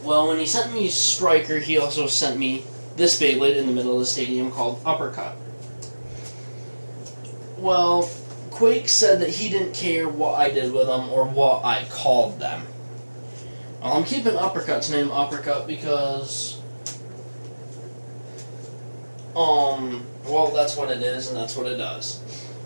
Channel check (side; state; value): both; inverted; correlation -1.00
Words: Well, when he sent me Striker, he also sent me this Beyblade in the middle of the stadium called Uppercup. Well, Quake said that he didn't care what I did with them or what I called them. Well, I'm keeping Uppercut's name Uppercup because, well, that's what it is and that's what it does.